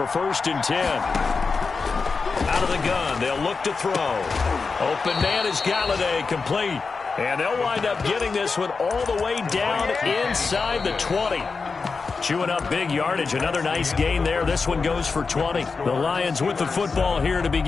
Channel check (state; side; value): quieter; right; 4.6 dB